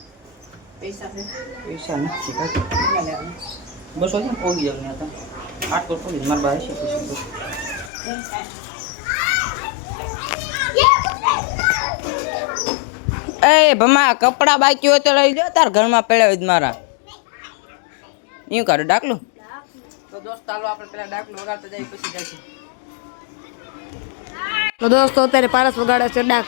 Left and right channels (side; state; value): right; drops out; at 7.9 s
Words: પૈસા નથી બસો છે પોગી જાવ ને. તો 800 પોગી મારા પાસે એ ભમા કપડા બાકી હોય તો લઈ જો. તાર ઘરમાં પડ્યા હોય મારા એવું કરું ડાકલું. તો દોસ્ત ચાલો આપણે પેલા ડાકલું વગાડતા જઈએ પછી જઈશું. તો દોસ્તો અત્યારે પારસ વગાડે છે